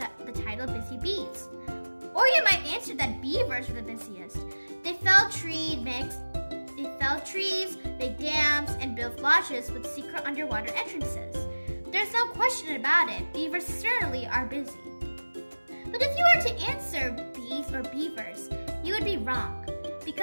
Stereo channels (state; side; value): inverted; both; correlation -1.00